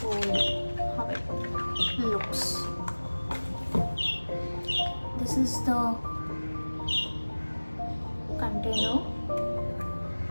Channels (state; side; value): inverted; both; correlation -1.00